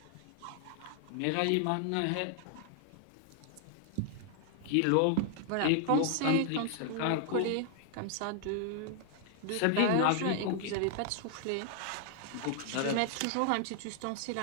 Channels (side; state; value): both; different; correlation 0.00